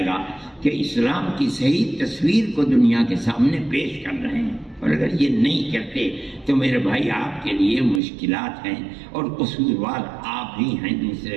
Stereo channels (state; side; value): drops out; left; at 8.0 s